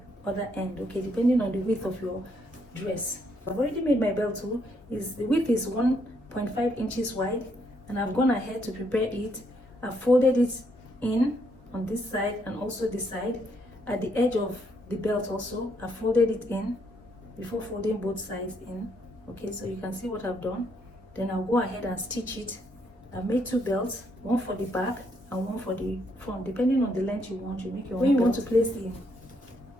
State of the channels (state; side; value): normal; both; correlation 0.73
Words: other end, okay, depending on the width of your dress. I've already made my belt too. The width is 1.5 inches wide, and I've gone ahead to prepare it. I've folded it in on this side and also this side. At the edge of the belt also, I folded it in before folding both sides in. Okay, so you can see what I've done. Then I'll go ahead and stitch it. I've made 2 belts, one for the back and one for the front. Depending on the length you want, you make your own. When you want to place the